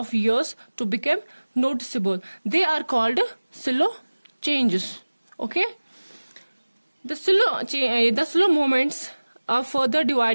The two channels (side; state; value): both; inverted; correlation -1.00